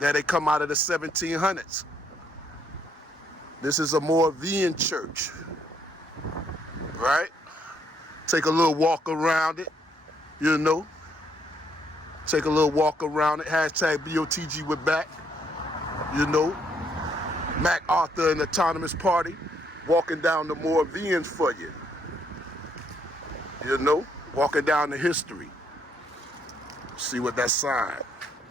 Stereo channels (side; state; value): both; normal; correlation 0.71